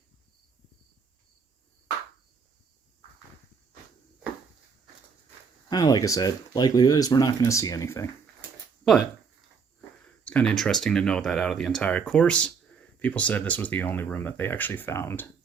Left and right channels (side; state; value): left; quieter; 5.7 dB